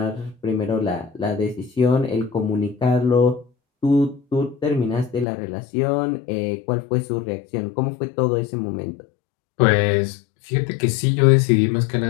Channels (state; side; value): drops out; right; at 5.2 s